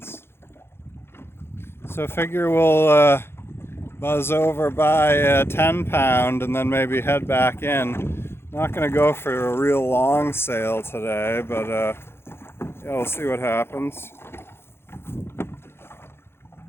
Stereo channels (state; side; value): late; right; 0.12 ms